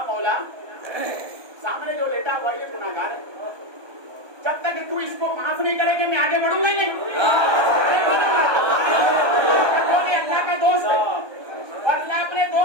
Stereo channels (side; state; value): left; late; 1.2 ms